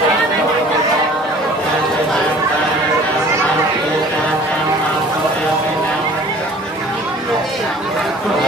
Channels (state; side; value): normal; both; correlation 0.49